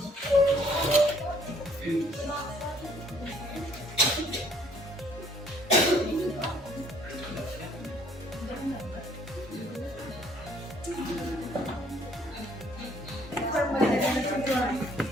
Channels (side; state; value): both; normal; correlation 0.62